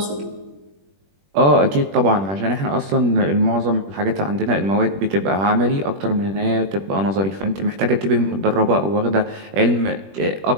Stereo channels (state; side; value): late; left; 21 ms